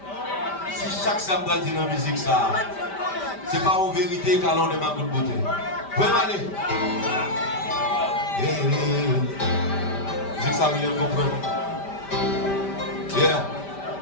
Si chaque samedi dit dans la musique ça, c'est pas en vérité qu'à l'on est ma bonne beauté. Vous pouvez m'aller. Musique ça veut bien comprendre. Yeah.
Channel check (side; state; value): right; late; 5.1 ms